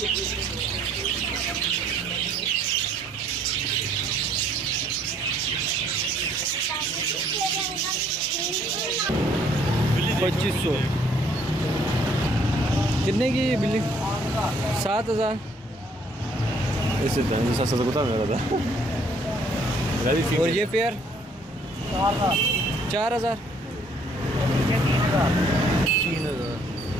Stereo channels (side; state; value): both; normal; correlation 0.63